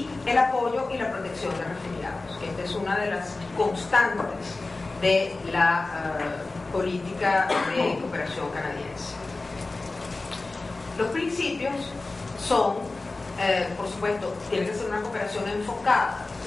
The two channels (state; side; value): quieter; right; 3.3 dB